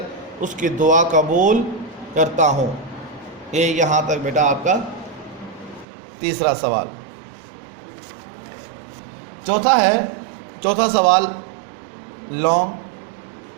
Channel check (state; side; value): drops out; left; at 5.9 s